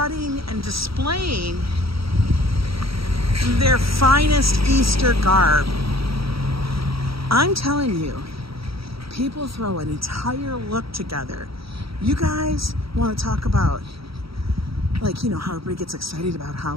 and displaying their finest Easter garb. I'm telling you, people throw an entire look together. You guys want to talk about, like, you know, how everybody gets excited about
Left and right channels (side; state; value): left; late; 0.75 ms